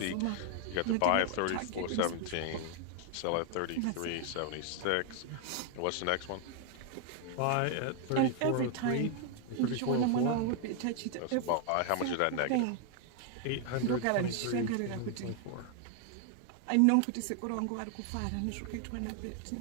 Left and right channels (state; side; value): different; both; correlation 0.00